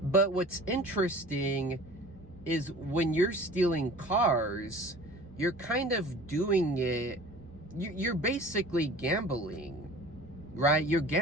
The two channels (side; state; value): both; normal; correlation 0.43